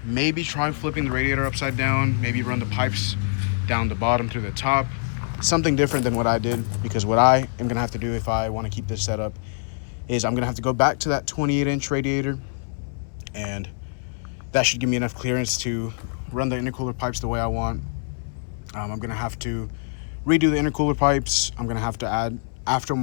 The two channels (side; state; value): right; silent; 62 dB below the other